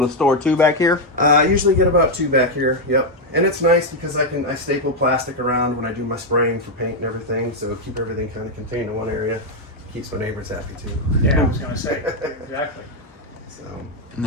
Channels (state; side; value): normal; both; correlation 0.02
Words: to store 2 back here? I usually get about 2 back here. Yep. And it's nice because I staple plastic around when I do my spraying for paint and everything, so keep everything kind of contained in one area. Keeps my neighbors happy too. Yeah, I was going to say. Exactly. So. And